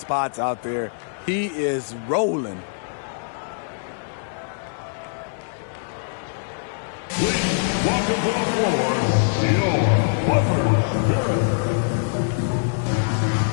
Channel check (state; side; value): silent; right; digital silence